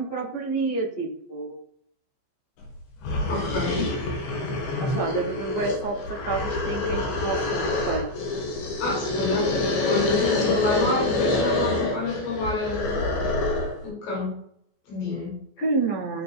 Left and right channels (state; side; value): late; right; 14 ms